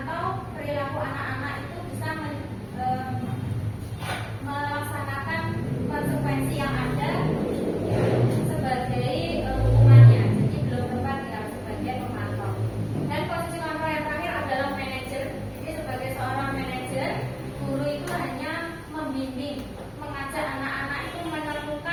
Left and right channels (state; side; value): identical; both; correlation 1.00